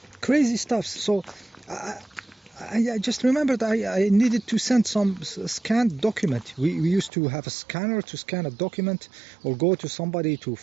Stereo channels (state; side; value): drops out; left; at 7.1 s